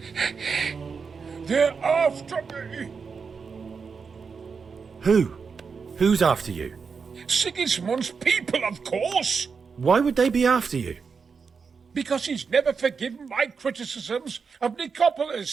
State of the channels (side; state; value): left; quieter; 5.5 dB